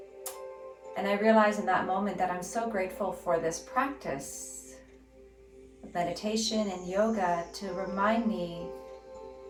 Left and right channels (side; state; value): both; identical; correlation 1.00